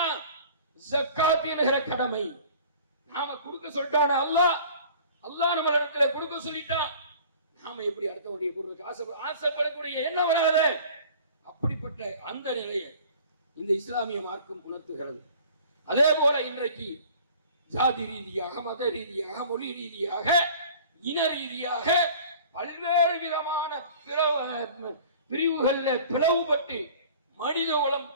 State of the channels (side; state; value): both; inverted; correlation -0.47